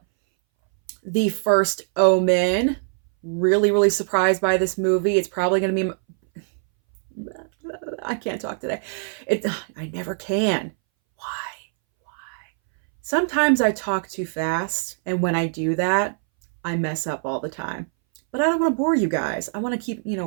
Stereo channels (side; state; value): left; silent; 62 dB below the other